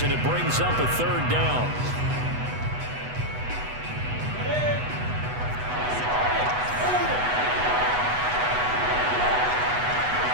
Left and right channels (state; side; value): late; left; 8.1 ms